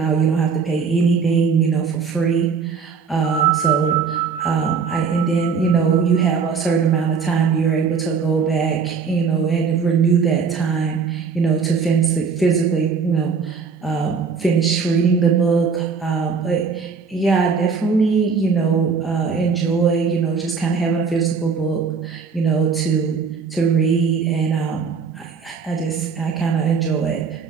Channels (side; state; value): left; quieter; 5.6 dB